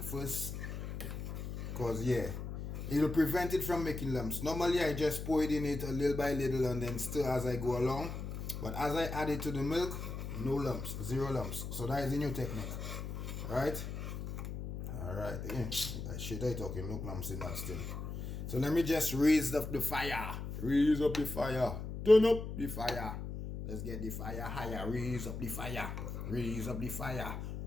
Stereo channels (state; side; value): noise; left; hum, 6 dB below the sound